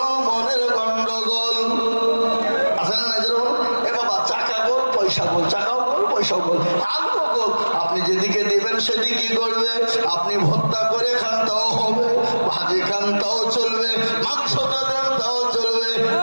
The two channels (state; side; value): inverted; both; correlation -1.00